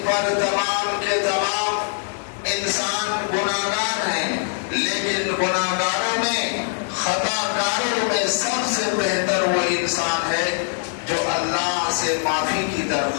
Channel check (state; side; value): silent; right; digital silence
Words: پر تمام کے تمام انسان گناہگار ہیں، لیکن گناہگاروں میں، خطا کاروں میں سب سے بہتر وہ انسان ہے جو اللہ سے معافی کی